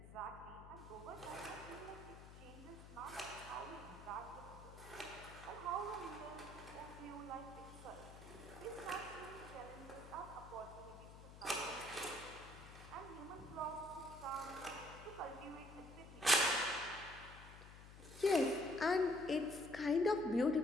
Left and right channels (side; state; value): left; noise; hum, 15 dB below the sound